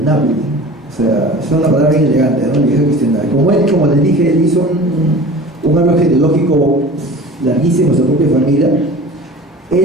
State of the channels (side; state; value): both; normal; correlation 0.40